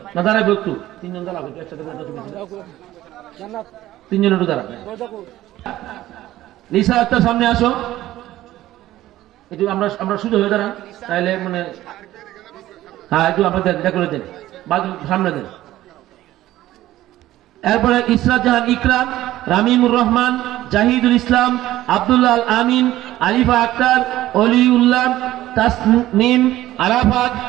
না দাঁড়াবে একটু, তিনজন দাঁড়াবে একসাথে, তিনজন একটু দাঁড়াবে। লিসা আক্তার সামনে আসো একটু, আমরা সুযোগ হয়ে দাঁড়ান তাইলে মানে, হ্যাঁ একটু আপনাদের দেখা করে দেন, বাজু সামনে দেন। এরপরে ইসরাত জাহান ইকরাম, রামিমুর রহমান, জাহিদুল ইসলাম, আব্দুল্লাহ আল আমিন, আলিফা আক্তার, অলিউল্লাহ, তাসনিম, আরাফাত,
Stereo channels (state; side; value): quieter; left; 14.9 dB